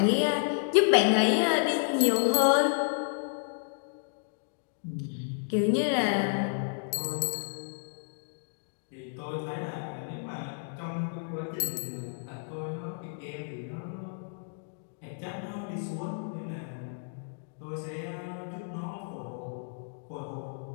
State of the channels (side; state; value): right; silent; digital silence